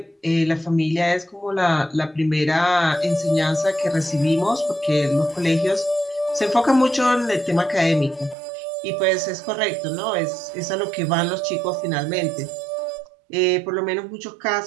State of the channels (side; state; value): left; drops out; at 8.3 s